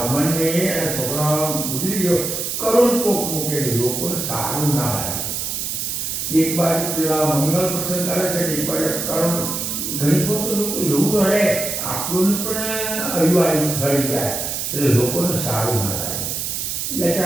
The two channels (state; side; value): noise; right; hiss, 3 dB below the sound